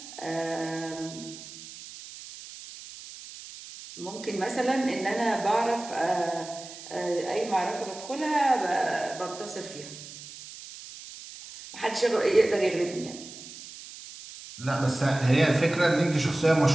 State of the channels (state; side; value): noise; right; hiss, 15 dB below the sound